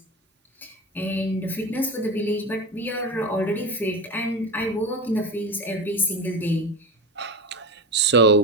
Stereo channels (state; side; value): normal; both; correlation 0.24